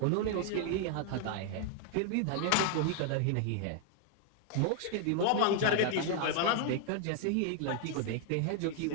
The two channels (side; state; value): both; different; correlation 0.00